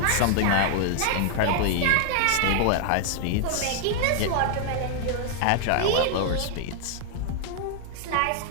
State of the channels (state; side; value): different; both; correlation 0.00